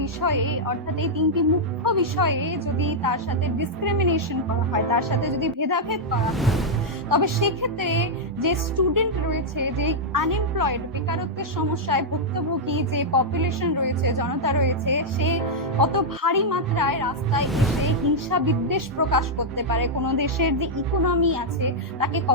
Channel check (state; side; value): normal; both; correlation -0.05